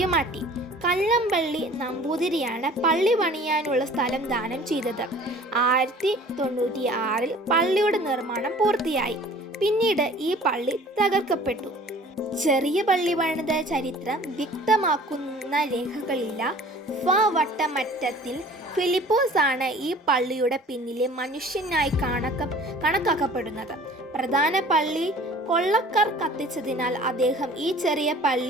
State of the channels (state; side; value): normal; both; correlation 0.48